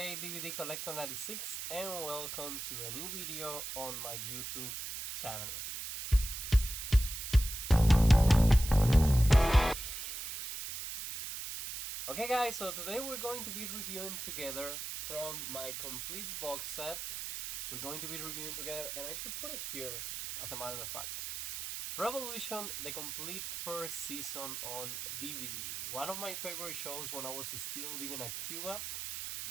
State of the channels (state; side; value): noise; right; hiss, 6 dB below the sound